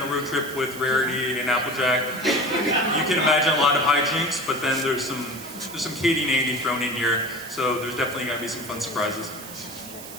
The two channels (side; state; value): right; noise; hiss, 14 dB below the sound